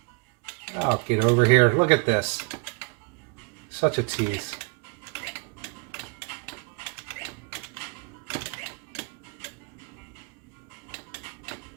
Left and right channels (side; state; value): left; quieter; 33.1 dB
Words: Oh, get over here. Look at this. Such a tease.